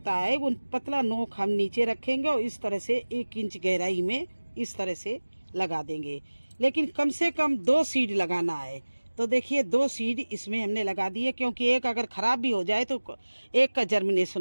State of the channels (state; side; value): inverted; both; correlation -1.00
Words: है, वो पतला नोक हम नीचे रखेंगे और इस तरह से 1 इंच गहराई में इस तरह से लगा देंगे। लेकिन कम से कम 2 सीड लगाना है। तो देखिए 2 सीड इसमें हमने लगा दिए, क्योंकि एक अगर ख़राब भी हो जाए तो एक का